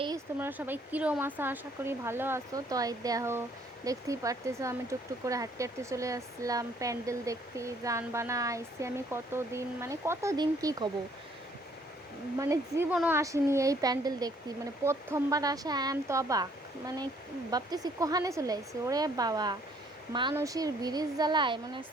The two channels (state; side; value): normal; both; correlation 0.63